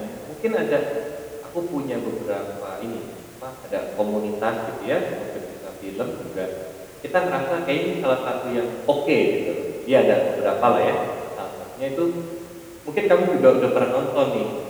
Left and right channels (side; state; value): both; identical; correlation 1.00